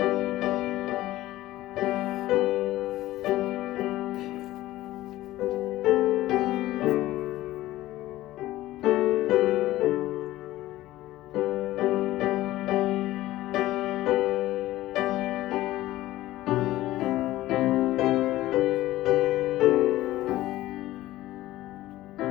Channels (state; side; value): quieter; right; 16.1 dB